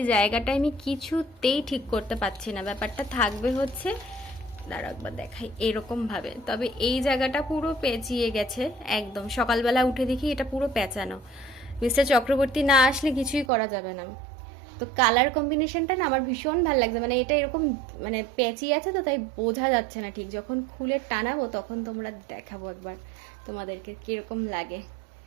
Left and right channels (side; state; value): left; drops out; at 13.5 s